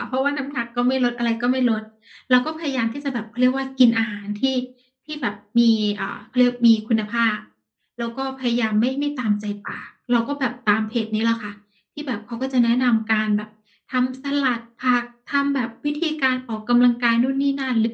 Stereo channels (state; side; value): identical; both; correlation 1.00